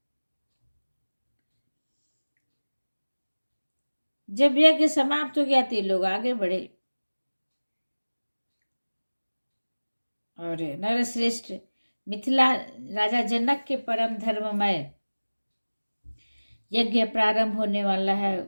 जब यज्ञ समाप्त हो गया तो लोग आगे बढ़े और नरश्रेष्ठ मिथिला राजा जनक के परम धर्ममय यज्ञ प्रारंभ होने वाला है,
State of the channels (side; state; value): both; inverted; correlation -1.00